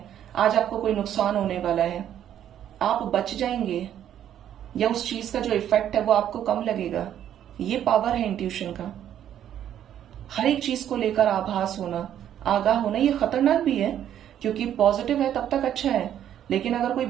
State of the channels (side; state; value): left; quieter; 10.5 dB